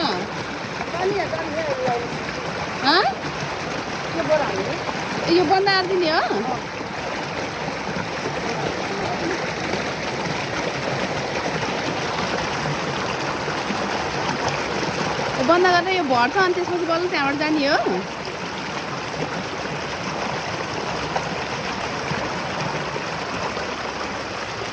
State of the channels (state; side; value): identical; both; correlation 1.00